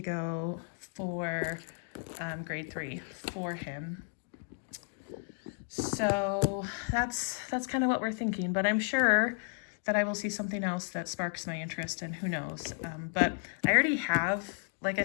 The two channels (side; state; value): right; silent; 56 dB below the other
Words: go for grade 3 for him. So that's kind of what we're thinking, but I'm sure that I will see something else that sparks my interest, and who knows. But I already have, like I